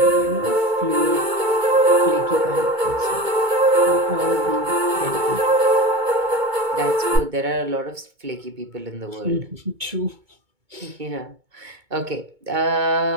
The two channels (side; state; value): left; late; 2.2 ms